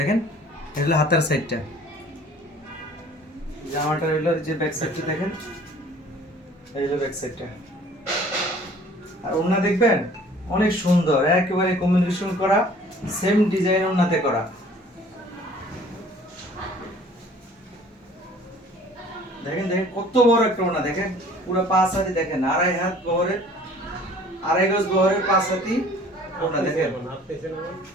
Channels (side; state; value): both; normal; correlation 0.51